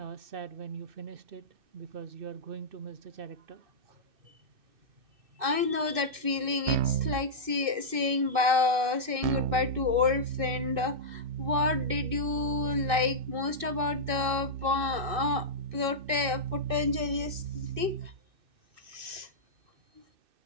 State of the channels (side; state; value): left; late; 2.6 ms